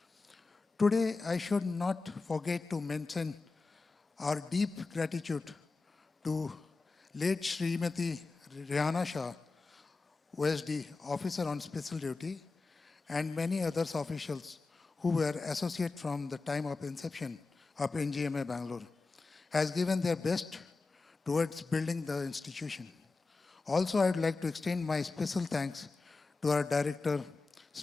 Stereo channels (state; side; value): quieter; right; 3.9 dB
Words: Today, I should not forget to mention our deep gratitude to late Srimati Rihanna Shah, OSD, Officer on Special Duty, and many others officials who were associate from the time of inception of NGMA Bangalore, has given their best towards building the institution. Also, I would like to extend my special thanks to our director,